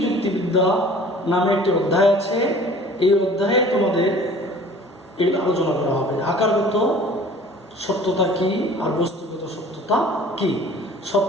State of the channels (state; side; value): normal; both; correlation 0.48